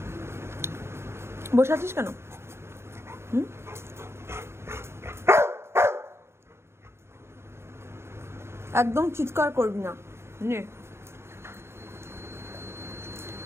বসে আছিস কেন? একদম চিৎকার করবি না। নে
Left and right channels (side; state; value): left; late; 0.12 ms